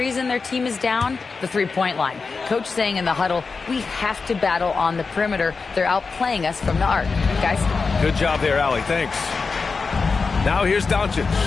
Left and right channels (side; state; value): right; quieter; 4.6 dB